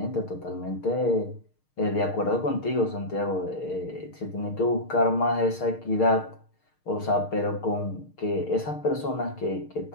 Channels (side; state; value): right; late; 6.5 ms